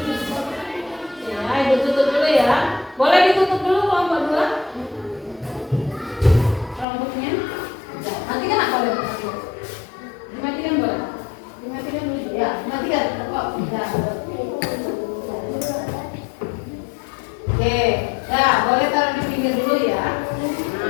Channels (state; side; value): drops out; right; at 6.9 s